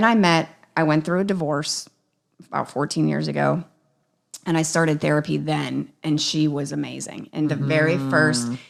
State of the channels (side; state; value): both; identical; correlation 1.00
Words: I went through a divorce about 14 years ago, and I started therapy then, and she was amazing. And the very first,